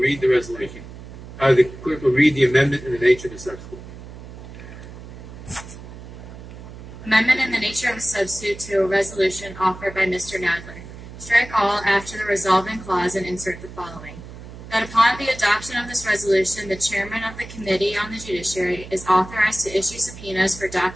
the resolution. The clerk will read the amendment and the nature of the substitute. Amendment in the nature of a substitute to a resolution offered by Mr. Nadler. Strike all after the resolving clause and insert the following. That upon the adoption of this resolution, the chairman of the Committee on the Judiciary is authorized to issue subpoenas for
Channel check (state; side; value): noise; right; hum, 14 dB below the sound